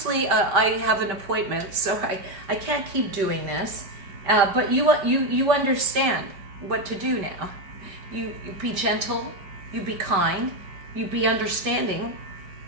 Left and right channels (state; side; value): late; left; 5.1 ms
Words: I have an appointment, so I can't keep doing this. But you understand what to do now. You be gentle. You be kind. You be understanding.